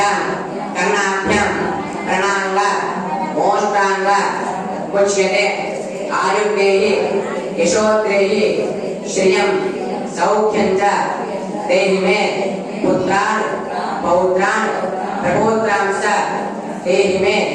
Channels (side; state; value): both; identical; correlation 1.00